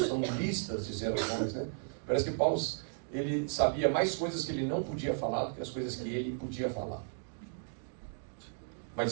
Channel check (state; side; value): silent; left; digital silence